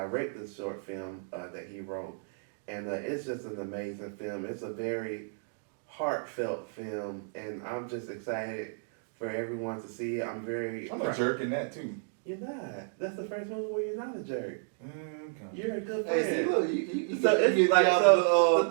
this short film that he wrote, and it's just an amazing film. It's a very heartfelt film, and I'm just excited for everyone to see it. I'm a jerk in that too. You're not. That's the first movie where you're not a jerk. Okay. You're a good friend. Hey, see, look, you So it's get like, out so of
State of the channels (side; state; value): left; silent; digital silence